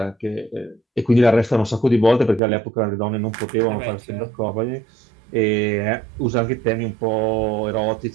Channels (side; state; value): left; drops out; at 2.4 s